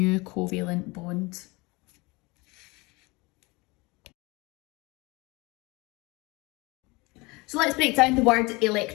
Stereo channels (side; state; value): right; quieter; 25.0 dB